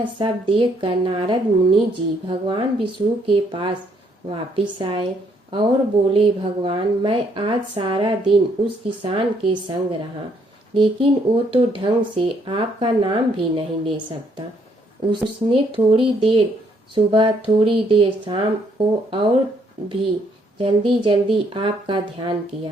सब देखकर नारद मुनि जी भगवान विष्णु के पास वापिस आए और बोले, भगवान मैं आज सारा दिन उस किसान के संग रहा, लेकिन वो तो ढंग से आपका नाम भी नहीं ले सकता। उसने थोड़ी देर सुबह थोड़ी देर शाम को और भी जल्दी जल्दी आपका ध्यान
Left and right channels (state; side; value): normal; both; correlation 0.69